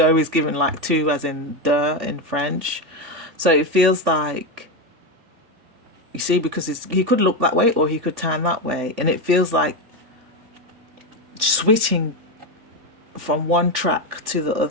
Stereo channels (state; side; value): late; left; 3.5 ms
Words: is given like two, as in de in French. So it feels like, you see, because he could look that way or he could turn that way, and it feels like switching from one track to the